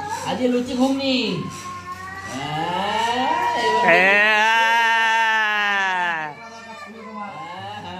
আজকে লুচি ঘুগনি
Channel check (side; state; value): both; identical; correlation 1.00